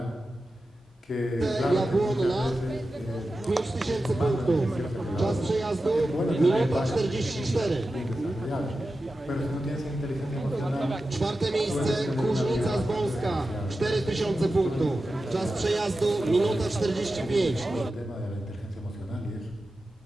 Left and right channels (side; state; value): both; normal; correlation 0.93